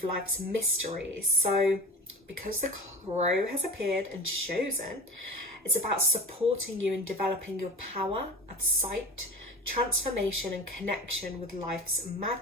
life's mysteries. So because the crow has appeared and chosen, it's about supporting you in developing your power of sight, transformation and connection with life's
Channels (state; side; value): normal; both; correlation 0.34